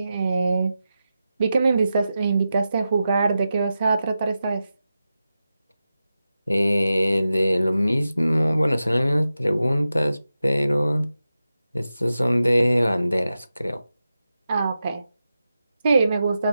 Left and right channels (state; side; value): inverted; both; correlation -0.91